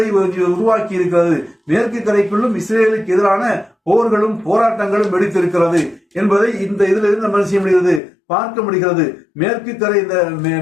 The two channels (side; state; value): right; drops out; at 8.0 s